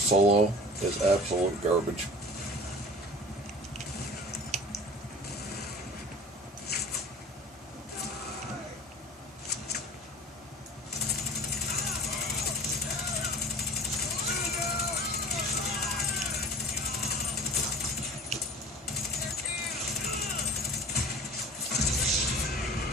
is absolute garbage.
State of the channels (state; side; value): normal; both; correlation 0.41